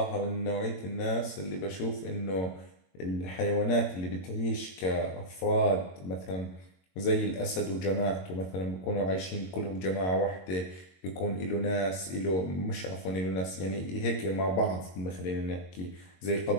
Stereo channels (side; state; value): right; late; 22 ms